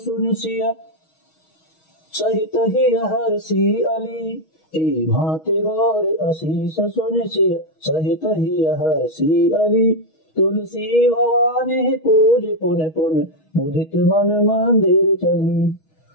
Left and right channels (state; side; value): late; right; 6.3 ms